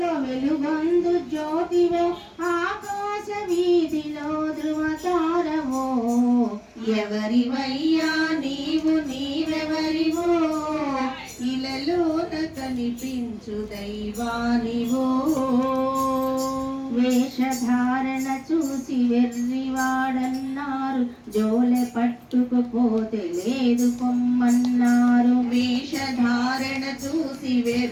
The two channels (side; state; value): both; identical; correlation 1.00